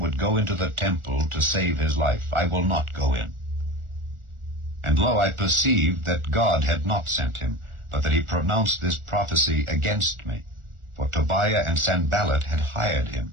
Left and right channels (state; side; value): late; left; 1.4 ms